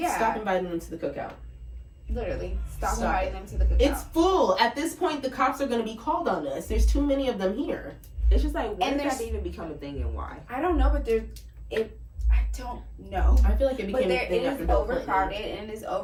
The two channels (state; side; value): identical; both; correlation 1.00